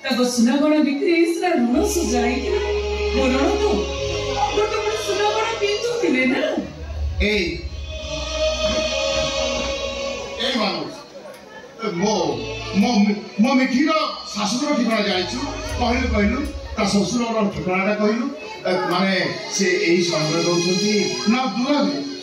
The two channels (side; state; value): both; identical; correlation 1.00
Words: ताको सुना गणा बिक्री इसरा ऋण सुजाई ऋण तो सुना गणा पिंधु थिले ना। ए मानुस मो मो मो मिठीर शाशुर ठिकाना जाइछु कहलु ता ससुरर ठिकानाटा कहलु माने से एही समय दउछंती ना दूर